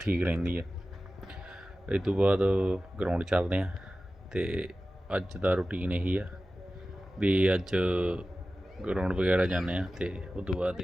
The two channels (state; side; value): normal; both; correlation 0.95